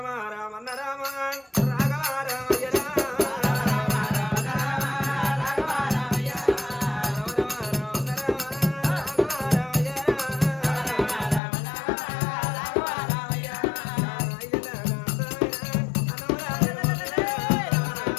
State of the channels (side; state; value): right; drops out; at 11.4 s